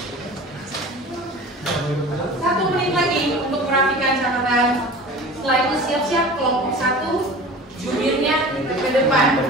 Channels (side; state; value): both; normal; correlation 0.39